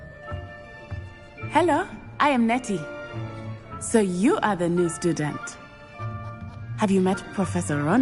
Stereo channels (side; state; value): both; identical; correlation 1.00